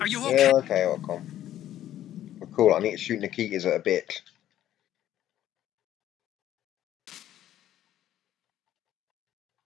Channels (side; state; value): right; quieter; 12.3 dB